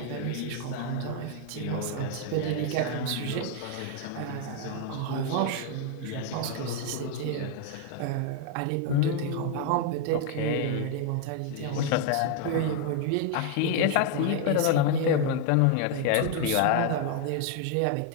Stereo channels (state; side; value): different; both; correlation 0.01